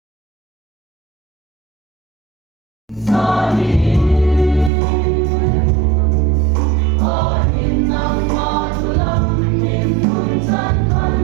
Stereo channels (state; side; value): drops out; left; at 4.7 s